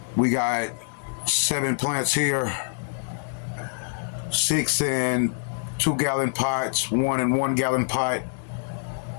We got 7 plants here, 6 in 2-gallon pots, 1 in 1-gallon pot.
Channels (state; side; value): silent; right; digital silence